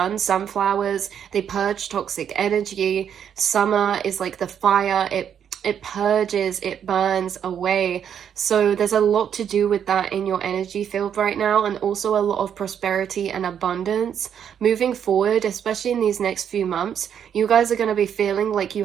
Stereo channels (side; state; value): left; quieter; 8.6 dB